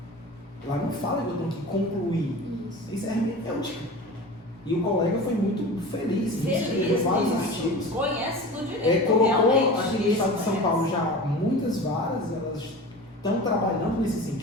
Lá não fala que eu tenho que concluir. Isso. Isso é hermenêutica. E o colega foi muito feliz. Escreveu vários artigos. Conhece do direito. Colocou realmente, aqui no isso estado de São conhece. Paulo já muitas varas, elas estão trabalhando nesse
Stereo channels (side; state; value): both; normal; correlation 0.34